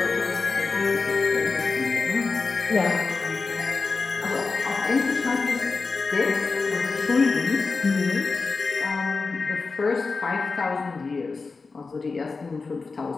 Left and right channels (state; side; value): quieter; right; 4.3 dB